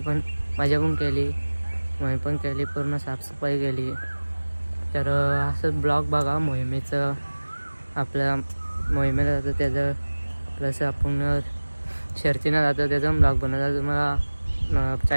पण केली मोहीम पण केली पूर्ण साफसफाई केली. तर असं ब्लॉग बघा मोहिमेचं आपल्या मोहिमेला जातं त्याचं प्लस आपण शर्तीनं जातं त्याचा ब्लॉग बनवता तुम्हाला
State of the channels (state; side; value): inverted; both; correlation -1.00